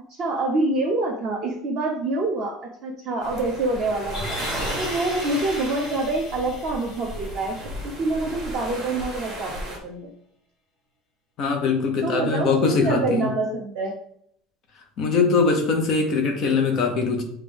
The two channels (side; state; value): both; normal; correlation 0.30